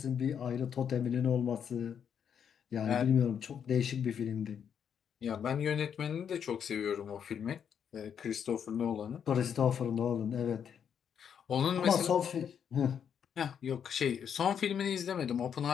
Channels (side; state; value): right; quieter; 8.0 dB